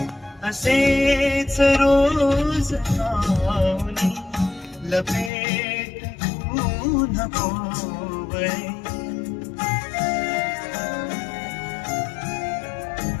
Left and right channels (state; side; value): drops out; right; at 5.3 s